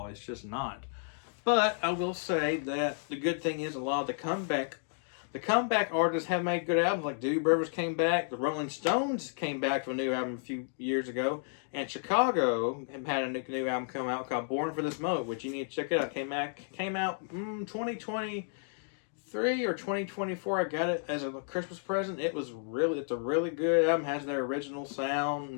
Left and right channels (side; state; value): right; silent; digital silence